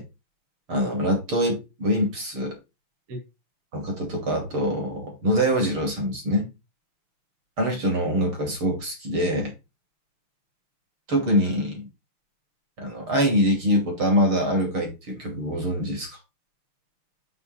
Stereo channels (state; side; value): late; left; 6.5 ms